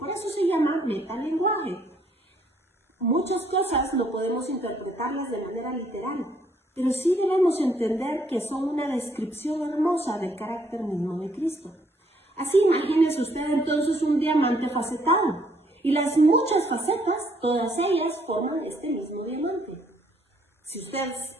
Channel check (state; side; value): normal; both; correlation 0.67